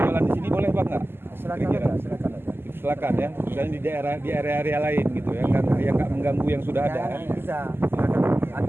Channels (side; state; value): left; late; 0.11 ms